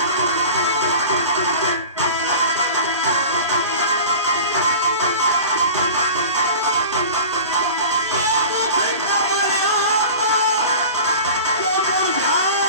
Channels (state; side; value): inverted; both; correlation -0.36